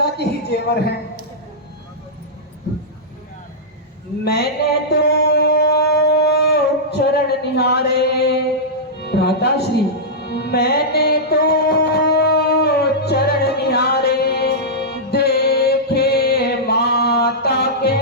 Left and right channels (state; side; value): normal; both; correlation -0.12